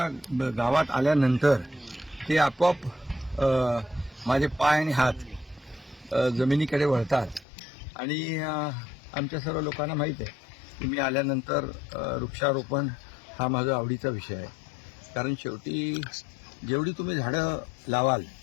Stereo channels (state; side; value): drops out; right; at 7.5 s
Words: गावात आल्यानंतर ते आपोआप माझे पाय आणि हात जमिनीकडे वळतात. आणि आमच्या सर्व लोकांना माहीत आहे की मी आल्यानंतर वृक्षारोपण हा माझा आवडीचा विषय आहे. कारण शेवटी जेवढी तुम्ही झाडं लावाल